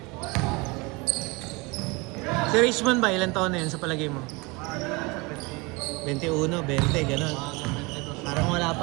Si Richmond ba, ilang taon na yun sa palagay mo? 21, 20, gano'n. Parang wala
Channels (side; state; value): left; quieter; 26.2 dB